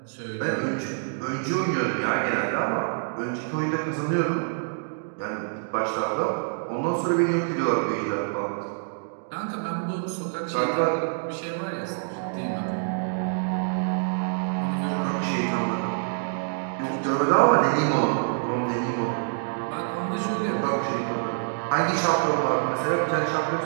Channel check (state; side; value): silent; left; digital silence